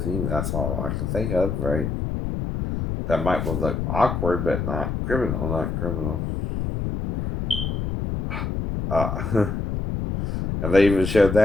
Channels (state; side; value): noise; left; rumble, 2 dB below the sound